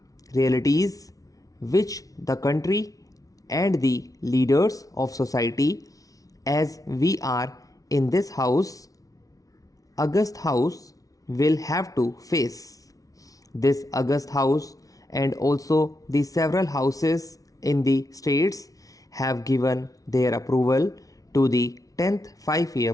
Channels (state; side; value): late; right; 0.17 ms